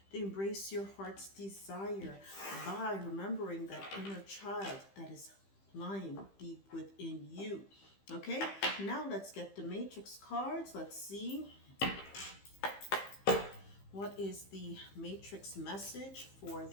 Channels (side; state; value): right; late; 15 ms